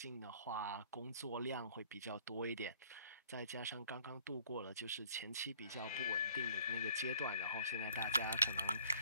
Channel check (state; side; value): inverted; both; correlation -0.57